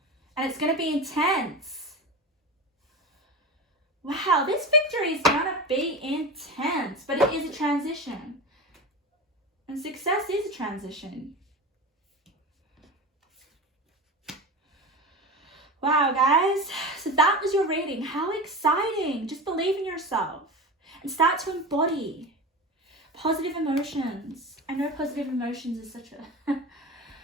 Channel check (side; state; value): both; normal; correlation 0.26